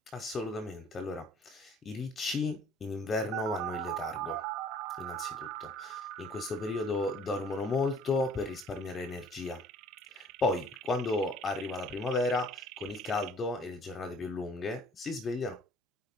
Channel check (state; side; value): normal; both; correlation 0.54